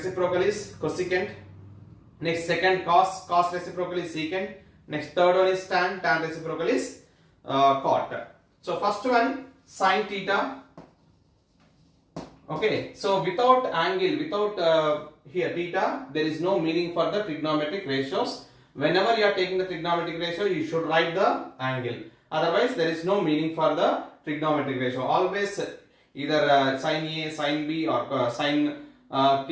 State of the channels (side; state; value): both; identical; correlation 1.00